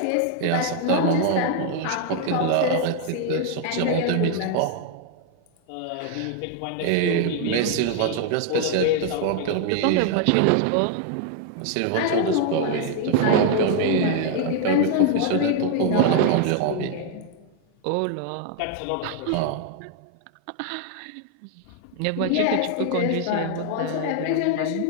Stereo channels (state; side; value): different; both; correlation 0.00